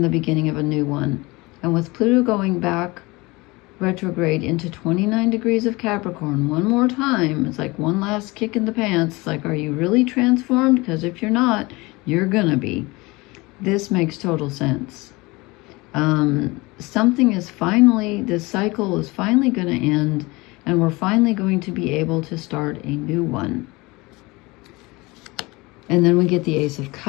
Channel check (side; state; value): right; quieter; 23.4 dB